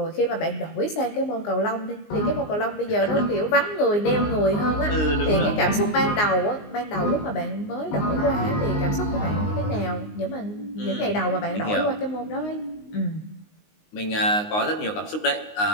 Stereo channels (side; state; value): right; late; 19 ms